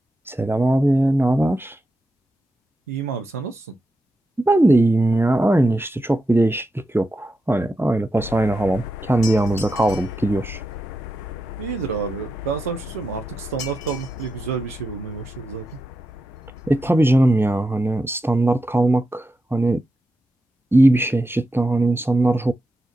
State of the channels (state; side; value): normal; both; correlation 0.88